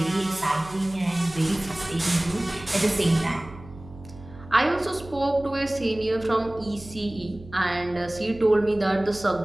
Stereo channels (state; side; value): noise; right; hum, 18 dB below the sound